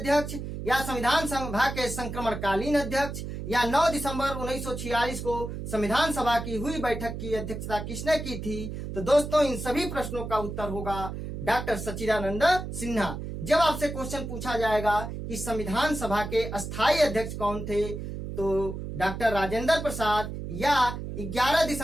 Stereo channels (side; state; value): right; noise; hum, 7 dB below the sound